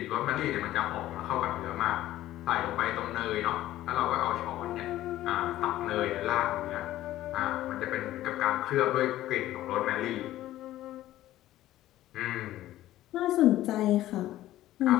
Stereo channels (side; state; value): right; quieter; 14.5 dB